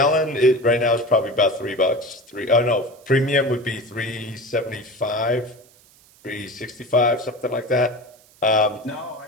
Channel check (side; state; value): right; noise; hiss, 28 dB below the sound